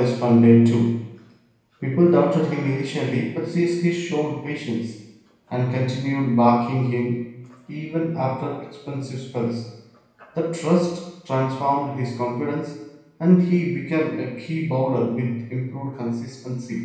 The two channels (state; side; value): identical; both; correlation 1.00